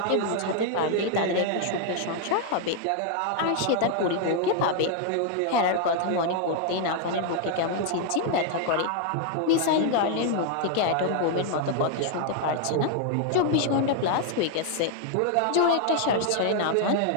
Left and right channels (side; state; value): both; different; correlation 0.00